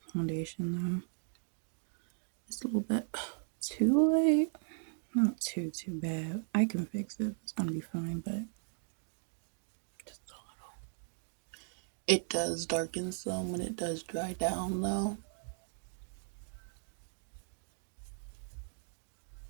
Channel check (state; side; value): silent; left; digital silence